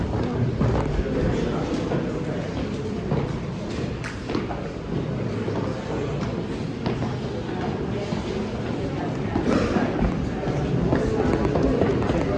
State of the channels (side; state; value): both; identical; correlation 1.00